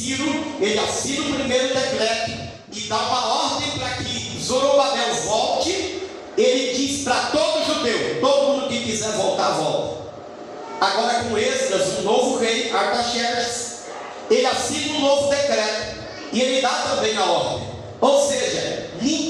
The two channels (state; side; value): identical; both; correlation 1.00